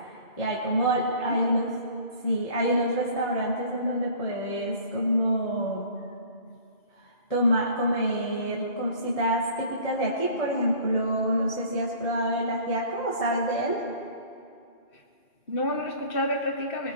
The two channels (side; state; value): right; late; 2.3 ms